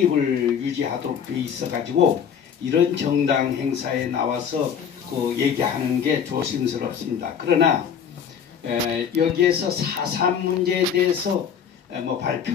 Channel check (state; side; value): quieter; right; 7.6 dB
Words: 유지하도록 돼 있어 가지고 이런 정당 행사에 나와서 그 얘기하는 게 조심스럽습니다. 그러나 여기에서 4.3 문제에 대해서 뭐